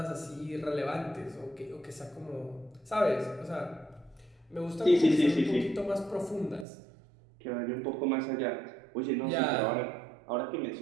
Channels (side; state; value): left; drops out; at 6.7 s